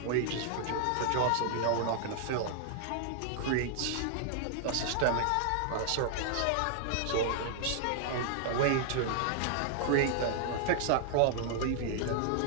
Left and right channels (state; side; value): different; both; correlation -0.01